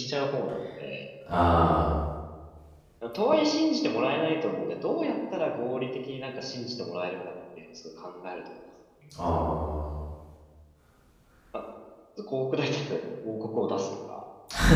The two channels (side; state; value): both; identical; correlation 1.00